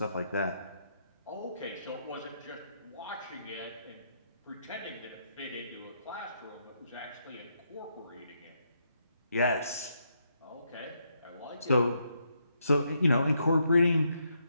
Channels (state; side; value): inverted; both; correlation -0.78